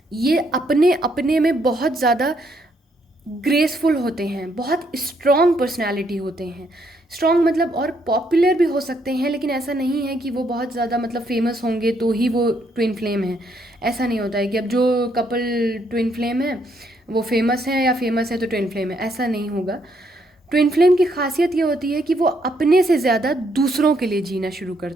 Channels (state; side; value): normal; both; correlation 0.73